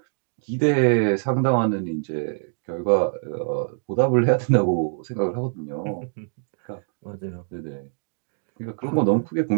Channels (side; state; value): left; silent; digital silence